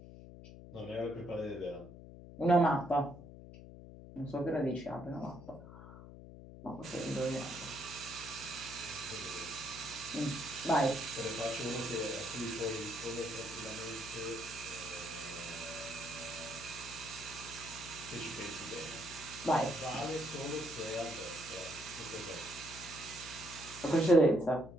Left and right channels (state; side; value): noise; left; hum, 14 dB below the sound